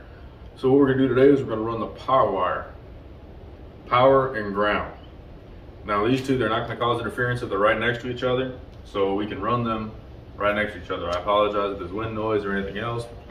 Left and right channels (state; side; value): identical; both; correlation 1.00